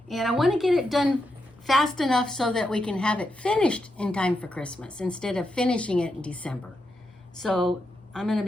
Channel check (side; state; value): both; normal; correlation 0.85